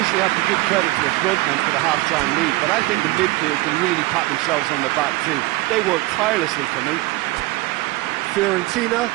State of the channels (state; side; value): quieter; left; 20.0 dB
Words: have to give credit to the frontmen for the half-time lead, but I think the midfield can really pat themselves on the back too. They worked tirelessly for me. Fiorentina